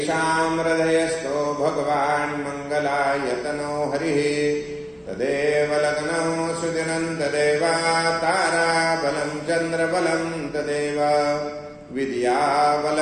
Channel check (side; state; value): both; identical; correlation 1.00